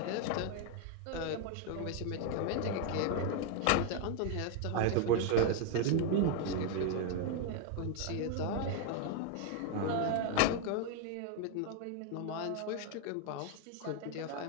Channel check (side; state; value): both; different; correlation 0.00